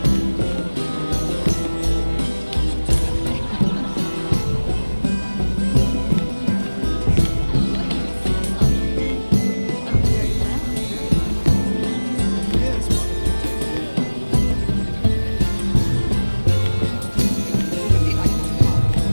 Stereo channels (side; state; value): both; inverted; correlation -1.00